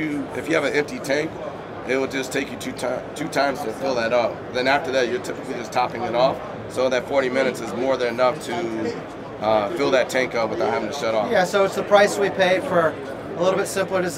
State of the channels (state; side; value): identical; both; correlation 1.00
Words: you have an empty tank, it will just take you two times to fill that up. Then after that, you're typically just topping it off, so that 40 minutes is more than enough to fill that tank up without having to shut off. Yeah, so it's the price we pay for a little bit simpler